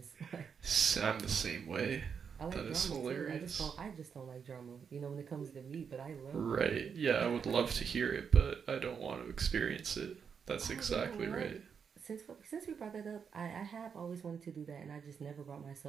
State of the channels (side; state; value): left; quieter; 6.7 dB